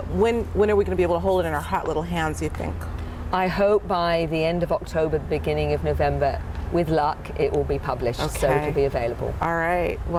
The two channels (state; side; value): identical; both; correlation 1.00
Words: When are we going to be able to hold it in our hot little hands, you think? I hope by the end of October, the beginning of November. With luck, it will be published, so it'll be available. All right.